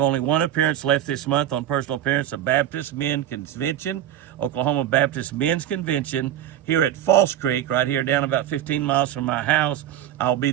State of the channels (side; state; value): left; quieter; 11.4 dB